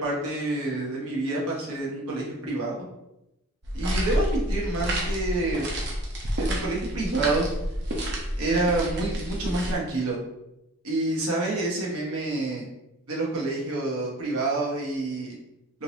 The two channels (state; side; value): normal; both; correlation 0.47